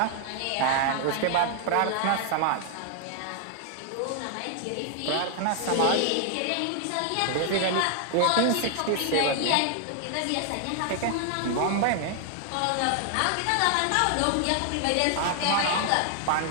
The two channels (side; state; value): both; different; correlation 0.00